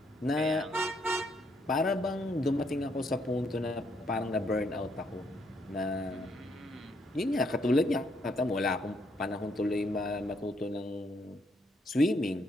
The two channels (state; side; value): normal; both; correlation 0.73